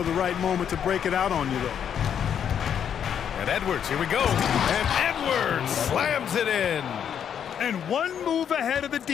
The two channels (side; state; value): right; quieter; 8.5 dB